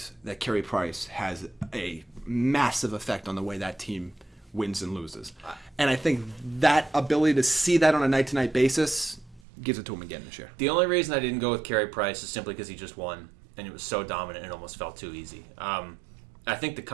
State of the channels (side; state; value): left; drops out; at 9.4 s